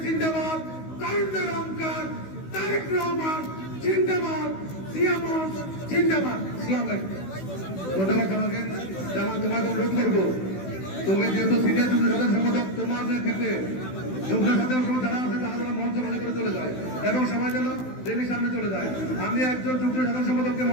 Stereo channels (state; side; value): late; right; 16 ms